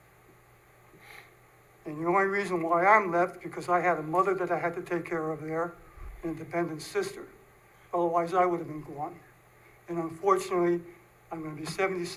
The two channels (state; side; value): identical; both; correlation 1.00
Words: And the only reason why I'm left, because I had a mother that I had to take care of there, and a dependent sister. Otherwise, I would have been gone. And unfortunately, I'm gonna be